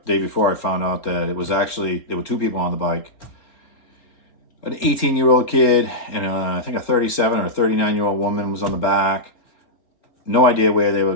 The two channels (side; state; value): right; late; 4.1 ms